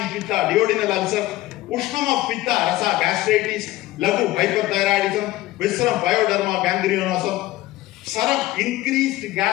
in Pitta, duodenal ulcer, Ushnam of Pitta, Rasa, gastritis, Lagu, hyperthyroidism, Visceram, pyoderma, gangrenosom, Saram, increased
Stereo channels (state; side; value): quieter; right; 17.0 dB